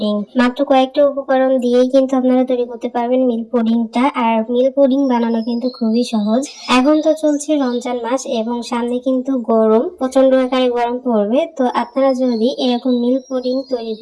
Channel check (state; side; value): identical; both; correlation 1.00